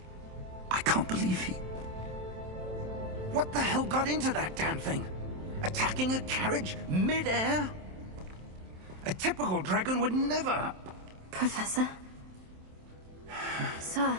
I can't believe he... What the hell got into that damn thing? Attacking a carriage mid-air? A typical dragon would never... Professor? Sir,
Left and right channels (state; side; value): late; left; 27 ms